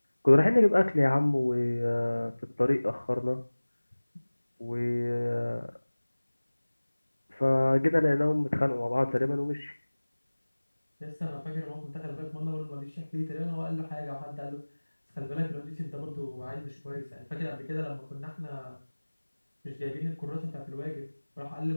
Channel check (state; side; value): inverted; both; correlation -1.00